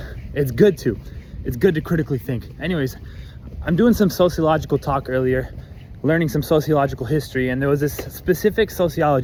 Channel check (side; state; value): both; identical; correlation 1.00